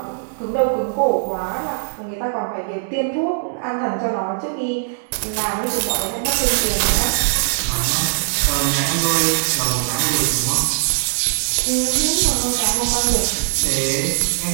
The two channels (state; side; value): silent; left; digital silence